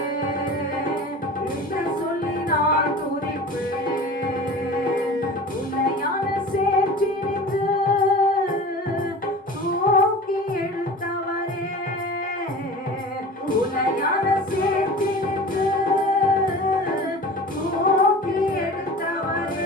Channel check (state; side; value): normal; both; correlation 0.37